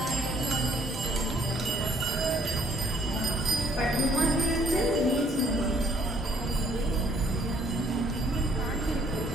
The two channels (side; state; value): both; normal; correlation 0.64